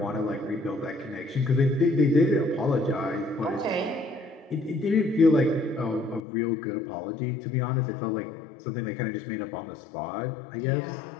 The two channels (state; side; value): drops out; right; at 6.2 s